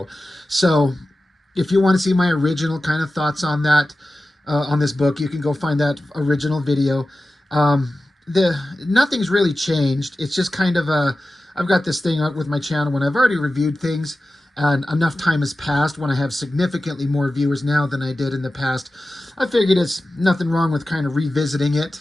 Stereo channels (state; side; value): normal; both; correlation 0.94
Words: So if you want to see my original kind of thoughts on that, on this book, you can go find that original video. Nothing's really changed. It's just kind of I've got this thing out with my channel when I've already reviewed things and enough time has passed, when I have significantly more viewers now than I did in the past. I figured it's nothing wrong with kind of revisiting